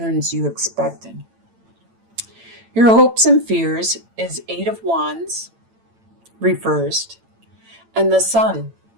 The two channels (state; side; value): late; left; 8.9 ms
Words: you expected. Your hopes and fears is Eight of Wands reversed and the Sun.